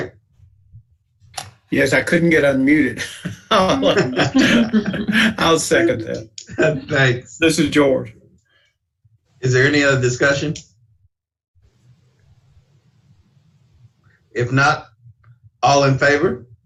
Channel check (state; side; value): identical; both; correlation 1.00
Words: Yes, I couldn't get unmuted. I'll second that. Thanks. This is George. Is there any other discussion? If not, all in favor?